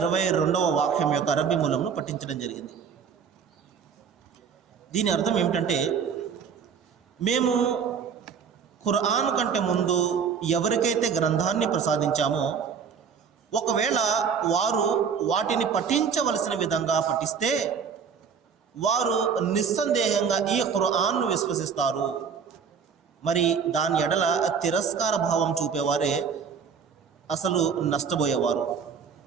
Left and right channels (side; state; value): left; quieter; 6.5 dB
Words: వాక్యం యొక్క అరబీ మూలంను పఠించడం జరిగింది. దీని అర్థం ఏమిటంటే, మేము ఖురాన్ కంటే ముందు ఎవరికైతే గ్రంథాన్ని ప్రసాదించామో ఒకవేళ వారు వాటిని పఠించవలసిన విధంగా పఠిస్తే వారు నిస్సందేహంగా ఈ ఖురాన్ను విశ్వసిస్తారు. మరి దాని ఎడల తిరస్కార భావం చూపేవారే అసలు నష్టపోయేవారు.